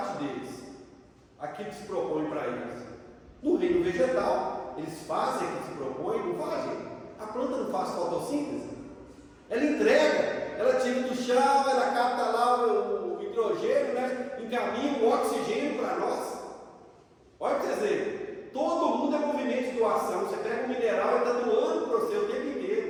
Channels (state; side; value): identical; both; correlation 1.00